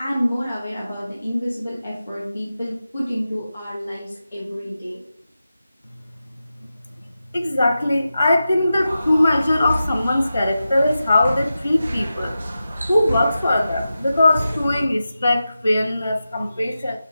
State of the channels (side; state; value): both; inverted; correlation -0.92